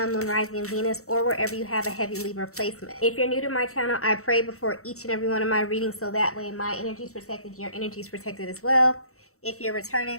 Moon, Rising, and Venus, or wherever you have a heavy Libra placement. If you're new to my channel, I pray before each and every one of my readings so that way my energy is protected, your energy is protected as well. If you're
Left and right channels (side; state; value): right; late; 0.64 ms